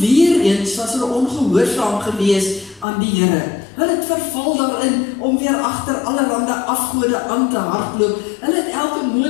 eens was hulle ongehoorsaam gewees aan die Here. Hulle het verval daarin om weer agter allerlei afgode aan te hardloop. Hulle het elke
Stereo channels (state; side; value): drops out; right; at 2.9 s